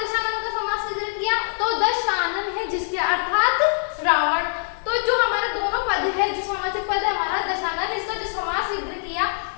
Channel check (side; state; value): right; silent; digital silence